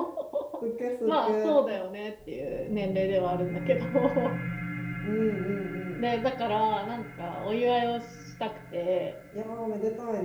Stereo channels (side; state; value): both; identical; correlation 1.00